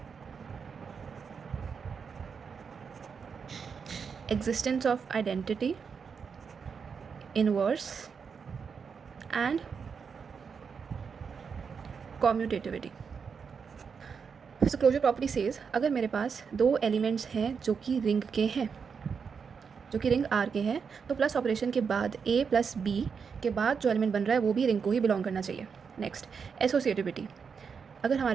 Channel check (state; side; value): quieter; left; 6.1 dB